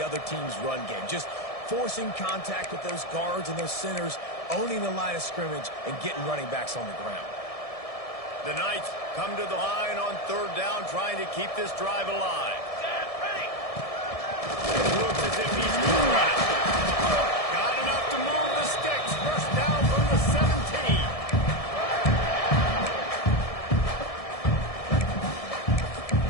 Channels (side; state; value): right; late; 1.7 ms